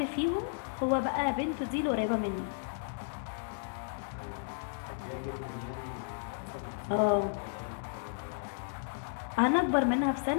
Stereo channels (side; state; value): right; silent; digital silence